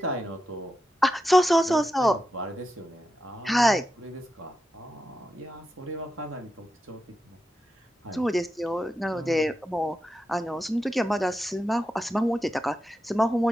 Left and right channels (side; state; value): both; normal; correlation 0.88